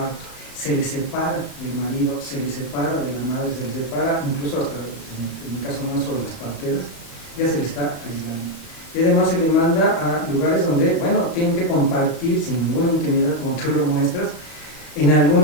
se le separa del marido, se le separa de la madre, se le separa incluso hasta, en el caso nuestro, de las parteras, ya se le está aislando. Y además se le manda a lugares donde, bueno, tienen que compartir sin ninguna intimidad, como tú lo muestras. En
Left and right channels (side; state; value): right; late; 34 ms